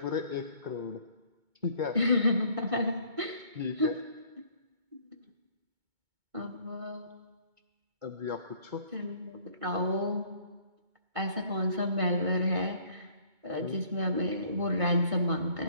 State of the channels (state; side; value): late; left; 2.2 ms